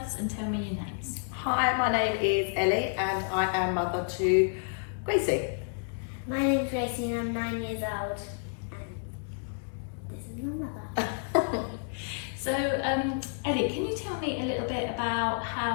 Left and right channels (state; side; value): silent; right; digital silence